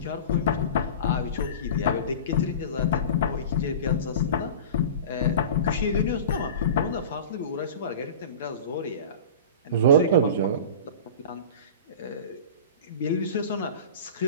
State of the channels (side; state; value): both; inverted; correlation -0.35